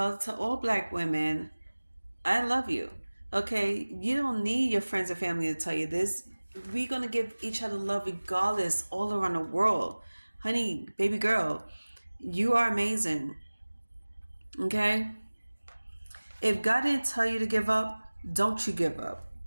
to all black women. I love you. Okay, you don't need your friends and family to tell you this. We're gonna give each other love regardless, all around the world. Honey, baby girl, you are amazing. Okay? If God didn't tell you to give up, don't you give up.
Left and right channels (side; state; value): both; inverted; correlation -1.00